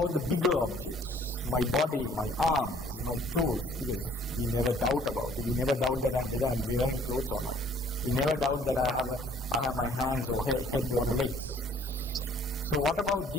the bigger objects? My body, my arms, my clothes, because we never doubt about it. We never doubt that whether I'm wearing clothes or not. We never doubt that I have my hands or head or legs. So what about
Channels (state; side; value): normal; both; correlation 0.57